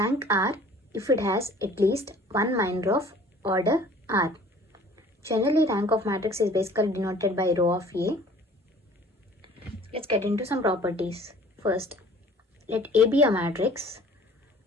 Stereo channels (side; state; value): both; normal; correlation 0.50